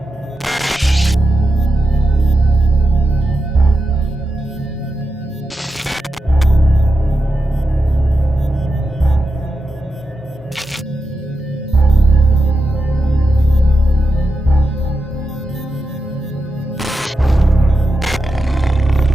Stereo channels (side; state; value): both; normal; correlation 0.89